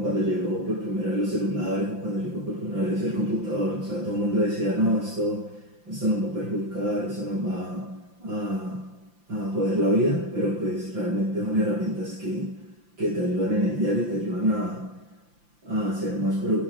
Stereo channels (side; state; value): left; late; 5.8 ms